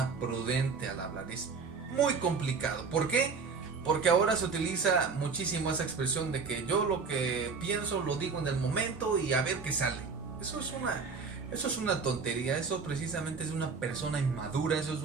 prudente al hablar. Es muy complicado. ¿Por qué? Porque ahora se utiliza muchísimo esa expresión de que yo lo que pienso lo digo en el momento y a ver qué sale. Eso es una tontería. Eso precisamente es una persona inmadura. Eso es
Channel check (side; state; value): left; quieter; 5.0 dB